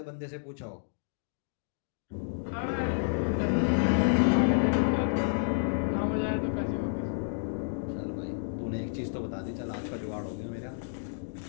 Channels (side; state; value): right; silent; digital silence